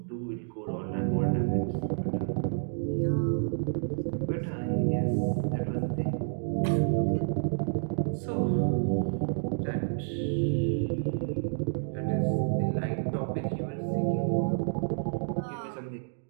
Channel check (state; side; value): silent; left; digital silence